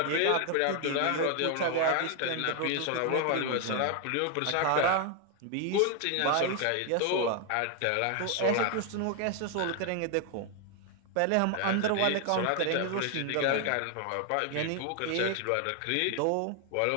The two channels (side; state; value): both; different; correlation 0.00